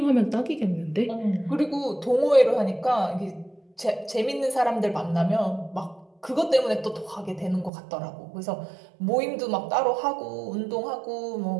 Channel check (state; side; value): drops out; left; at 7.7 s